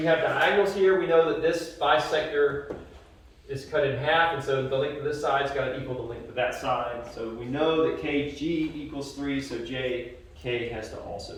have diagonals here, we know that this bisector is cut in half, and so the length of this side's got to equal the length of that side. So we know that KG equals 3, so JK has to also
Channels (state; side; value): identical; both; correlation 1.00